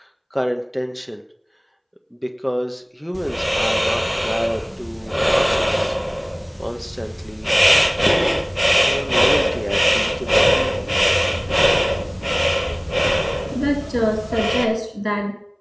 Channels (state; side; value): identical; both; correlation 1.00